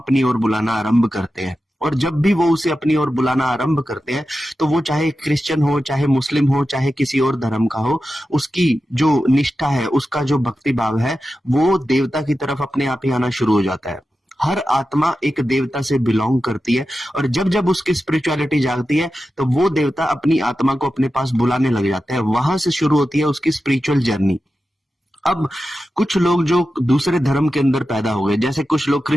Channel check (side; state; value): both; normal; correlation 0.92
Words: ओर बुलाना आरंभ करते हैं, और जब भी वो उसे अपनी ओर बुलाना आरंभ करते हैं तो वो चाहे क्रिश्चियन हो, चाहे मुस्लिम हो, चाहे किसी और धर्म का हो, उसकी जो निष्ठा है, उसका जो भक्ति भाव है, वो देवता की तरफ अपने आप ही आना शुरू हो जाता है। हर आत्मा एक देवता से बिलोंग करती है, और जब जब उसकी स्पिरिचुअलिटी जागती है तो वो देवता अपनी आत्मा को अपने पास बुलाने लग जाता है। वहां से शुरू होती है उसकी स्पिरिचुअल जर्नी। अब कुछ लोग जो दूसरे धर्म के अंदर पैदा हो गए, जैसे कुछ लोग